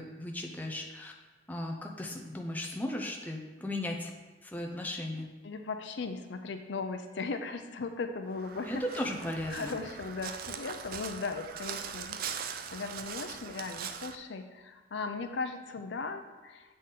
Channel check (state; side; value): normal; both; correlation 0.24